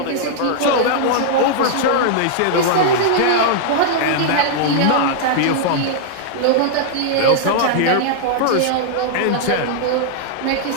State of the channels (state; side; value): different; both; correlation -0.01